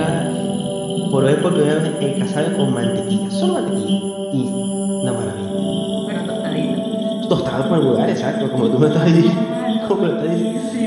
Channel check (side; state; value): both; identical; correlation 1.00